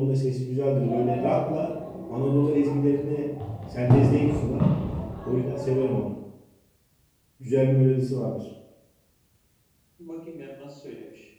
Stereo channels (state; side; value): identical; both; correlation 1.00